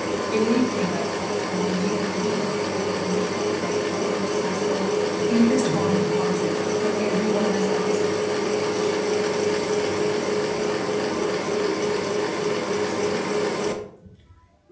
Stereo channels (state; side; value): identical; both; correlation 1.00